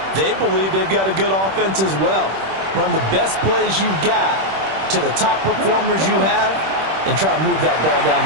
They believe they've got a good offense as well. Run the best plays you've got to the top performers you have, and try to move that ball down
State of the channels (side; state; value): left; late; 26 ms